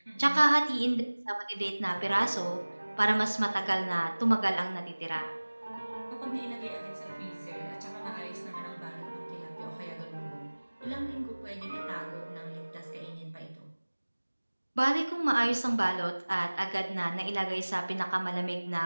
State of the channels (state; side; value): inverted; both; correlation -1.00